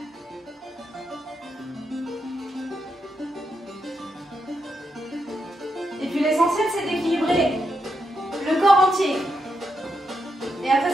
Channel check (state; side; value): normal; both; correlation 0.83